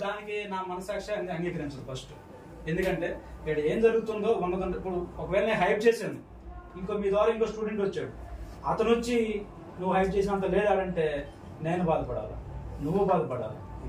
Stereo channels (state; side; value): identical; both; correlation 1.00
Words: దానికి నా మనసాక్షి అంగీకరించదు ఫస్ట్. ఎందుకంటే ఇక్కడ ఏం జరుగుతుందో ఉన్నదంటే ఇప్పుడు ఒకవేళ నేను హైప్ చేశాను, ఇంకో మీ ద్వారా ఇంకో స్టూడెంట్ వచ్చాడు, అతను వచ్చి నువ్వు హైప్ చేసినంత లేదంటే నేను బాధపడాలి, నువ్వు బాధపడాలి.